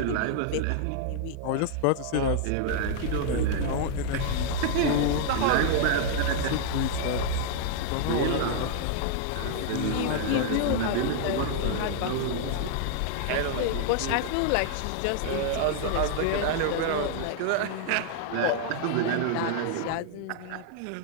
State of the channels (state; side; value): different; both; correlation -0.01